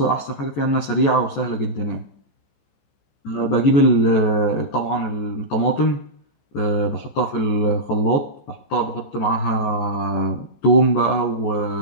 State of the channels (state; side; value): late; right; 15 ms